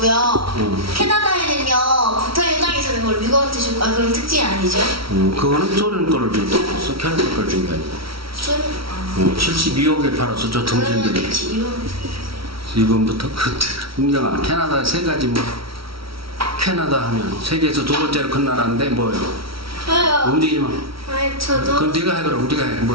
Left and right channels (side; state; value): left; late; 0.75 ms